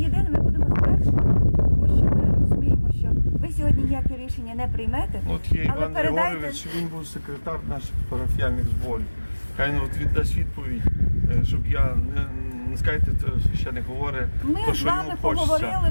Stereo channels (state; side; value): inverted; both; correlation -1.00